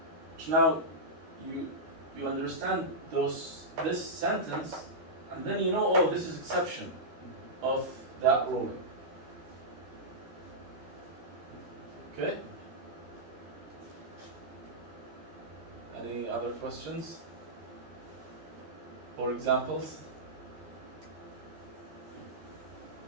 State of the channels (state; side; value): late; left; 13 ms